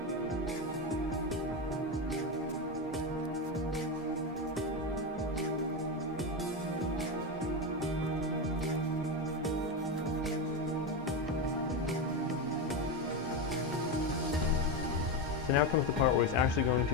So now comes the part where he's actually going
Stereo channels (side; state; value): both; normal; correlation 0.14